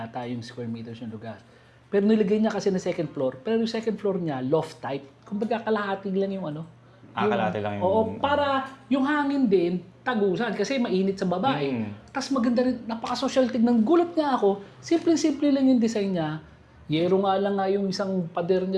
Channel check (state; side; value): identical; both; correlation 1.00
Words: yung square meters yung lugar. Pero nilagay niya kasi na second floor. Pero yung second floor niya, loft type. Kumbaga kalahati lang yung Kalahati lang yung... Oo, para yung hangin din, tagusan. Kasi mainit sa baba Tapos maganda rin, napaka-social tignan. Gulat nga ako, simple-simple lang yung design niya. Yero nga lang yung isang pader